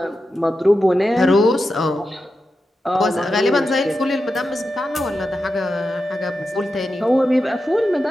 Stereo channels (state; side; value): normal; both; correlation 0.90